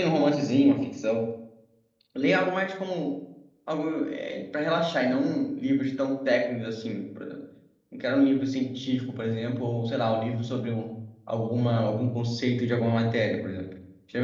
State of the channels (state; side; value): identical; both; correlation 1.00